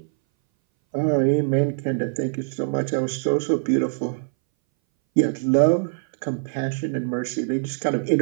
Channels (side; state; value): left; silent; 61 dB below the other